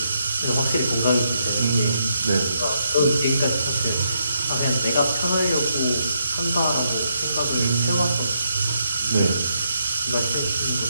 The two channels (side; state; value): both; inverted; correlation -0.78